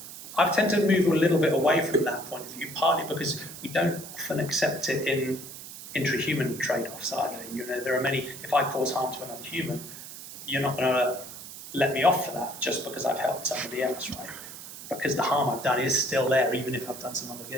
I've tended to move a little bit away from that point of view, partly because we don't often accept it in intra-human trade-offs either. You know, there are many, if I cause harm to another human, you're not going to let me off for that just because I've helped somebody else, right? Because the harm I've done is still there, even if I've done some other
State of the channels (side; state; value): right; noise; hiss, 13 dB below the sound